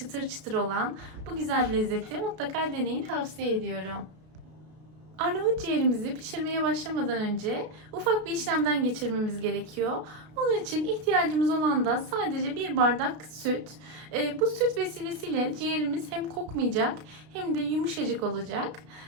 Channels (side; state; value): left; late; 33 ms